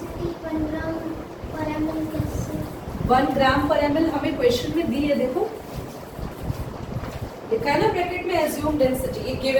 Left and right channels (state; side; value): identical; both; correlation 1.00